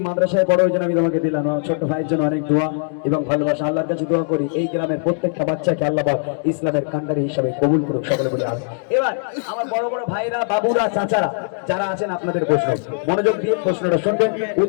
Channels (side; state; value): right; silent; digital silence